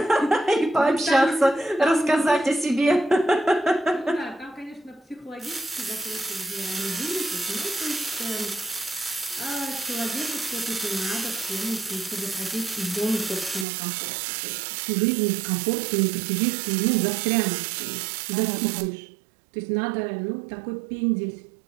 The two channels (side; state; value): left; drops out; at 13.7 s